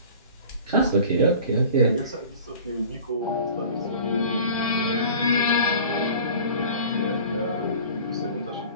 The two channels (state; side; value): inverted; both; correlation -0.42